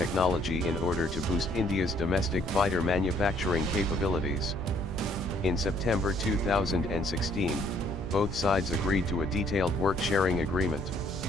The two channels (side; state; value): both; normal; correlation 0.64